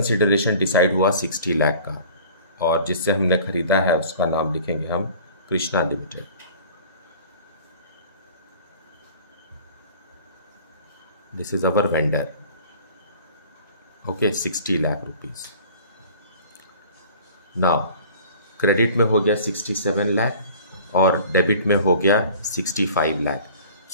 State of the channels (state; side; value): inverted; both; correlation -0.46